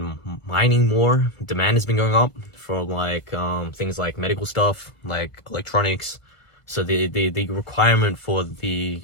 mining more. Demand has been going up for like things like medical stuff, like electronics. So the requirement for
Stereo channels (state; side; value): late; right; 1.5 ms